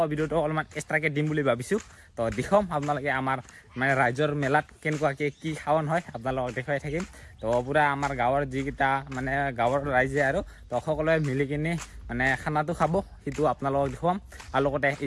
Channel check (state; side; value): identical; both; correlation 1.00